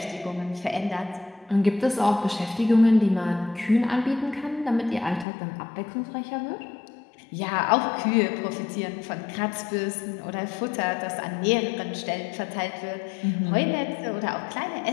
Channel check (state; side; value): drops out; right; at 5.2 s